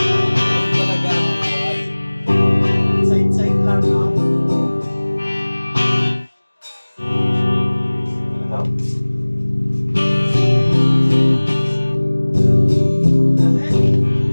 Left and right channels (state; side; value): inverted; both; correlation -1.00